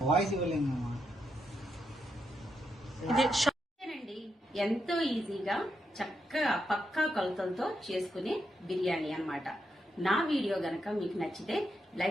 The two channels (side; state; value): both; normal; correlation 0.82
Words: వాయిస్ ఇవ్వలేము. ఎంతో ఈజీగా చక్కగా పక్కా కొలతలతో చేసుకునే బిర్యానీ అన్నమాట. నా వీడియో గనక మీకు నచ్చితే